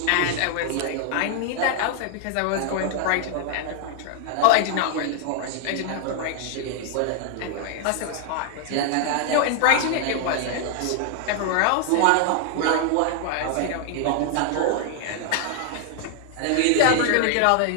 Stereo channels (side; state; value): both; different; correlation 0.00